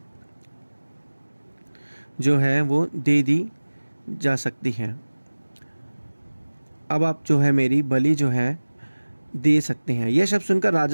जो है वो दे दी जा सकती है। अब आप जो है मेरी बलि जो है दे सकते हैं। यह शब्द सुनकर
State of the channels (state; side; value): inverted; both; correlation -1.00